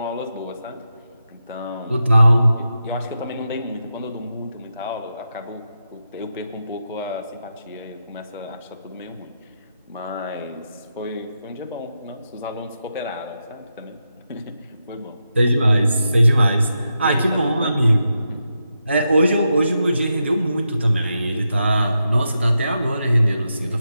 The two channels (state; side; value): inverted; both; correlation -0.87